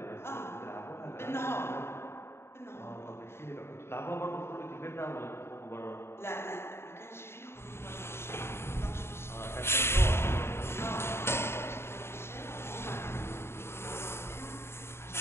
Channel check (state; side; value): late; right; 0.12 ms